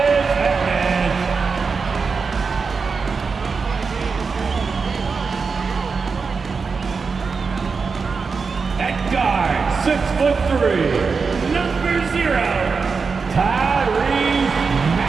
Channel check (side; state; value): left; quieter; 5.0 dB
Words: Harris. At guard, 6'3", number 0, Tyrese